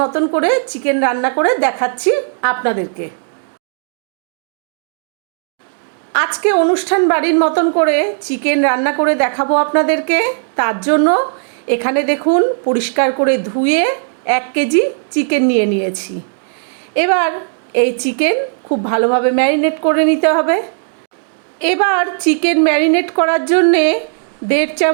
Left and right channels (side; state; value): left; silent; digital silence